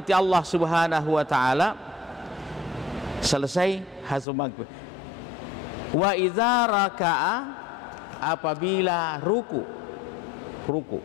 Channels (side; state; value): right; drops out; at 4.2 s